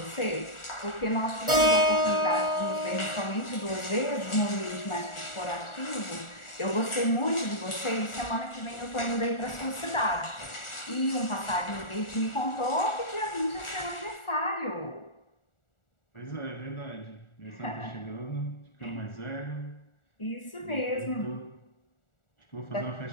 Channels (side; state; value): right; late; 1.4 ms